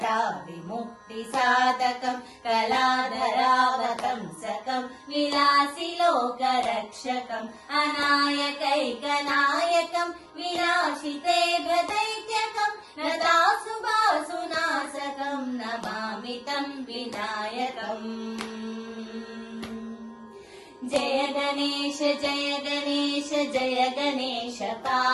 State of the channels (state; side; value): identical; both; correlation 1.00